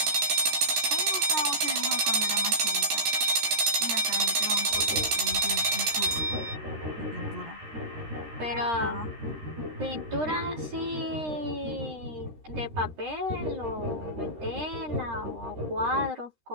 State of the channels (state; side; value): late; left; 13 ms